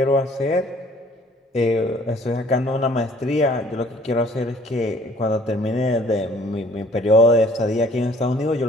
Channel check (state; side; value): normal; both; correlation 0.56